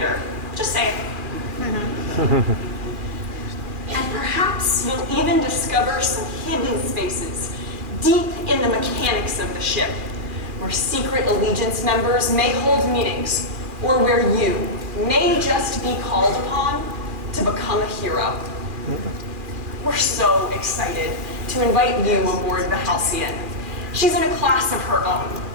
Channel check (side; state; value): left; late; 2.4 ms